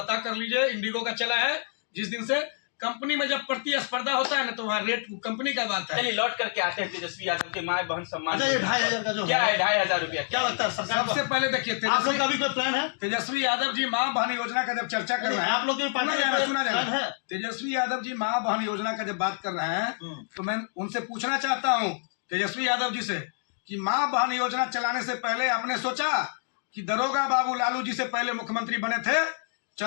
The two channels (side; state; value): right; silent; 60 dB below the other